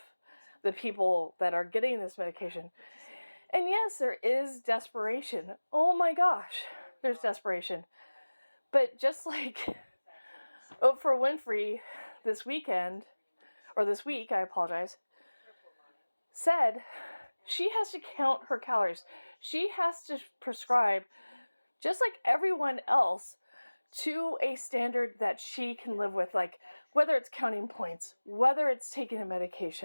the people that are getting this medication. And yes, there is desperation. Oh my gosh, there's desperation. But just like Oprah Winfrey this week, I apologize, said she has to count her calories. She has to prescribe, just like everyone else, to a standard that she can live with, like whether it's counting points, whether it's taking a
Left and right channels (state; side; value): inverted; both; correlation -1.00